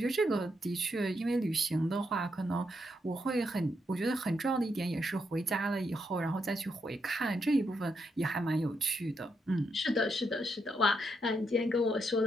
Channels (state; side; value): normal; both; correlation 0.80